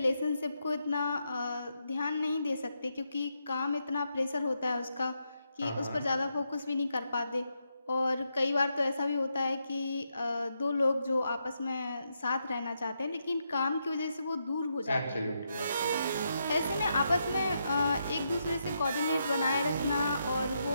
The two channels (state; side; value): inverted; both; correlation -0.82